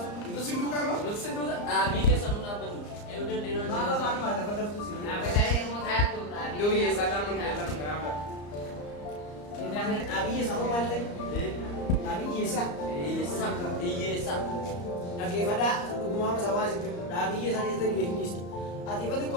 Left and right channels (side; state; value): right; late; 34 ms